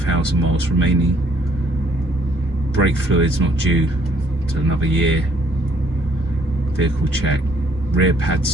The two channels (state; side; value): normal; both; correlation 0.64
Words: miles remaining. Brake fluid's not due to another year. Vehicle check, rear